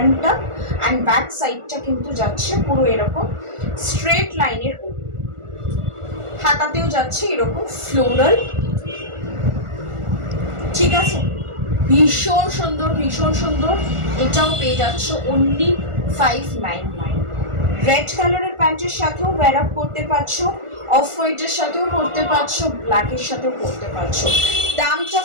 অ্যান্ড ব্যাক সাইডটা কিন্তু যাচ্ছে পুরো এরকম স্ট্রেট লাইনের ওপর। হাতাতেও যাচ্ছে এরকম ফ্লোরাল। ঠিক আছে, ভীষণ সুন্দর, ভীষণ সুন্দর। এটাও পেয়ে যাচ্ছ অনলি 599। রেড কালারের প্যান্টের সাথেও ওয়্যার আপ করতে পারছো, অফ হোয়াইটের সাথেও পরতে পারছো, ব্ল্যাকের সাথেও পরতে পারছো। দামটা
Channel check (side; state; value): left; late; 1.4 ms